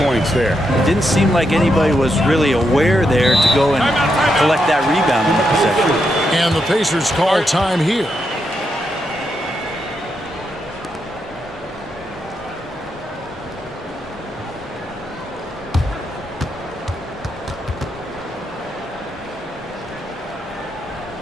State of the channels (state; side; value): normal; both; correlation 0.82